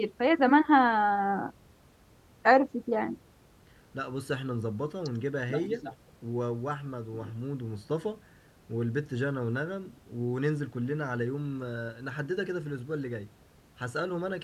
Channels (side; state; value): both; identical; correlation 1.00